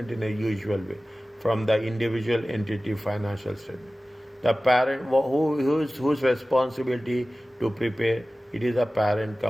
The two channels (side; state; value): both; normal; correlation 0.97